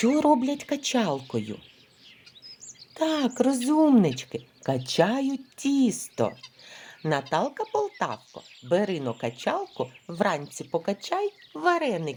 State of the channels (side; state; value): both; identical; correlation 1.00